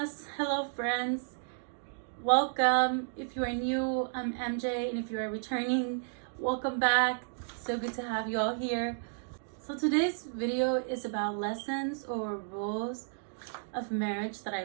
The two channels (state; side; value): silent; left; digital silence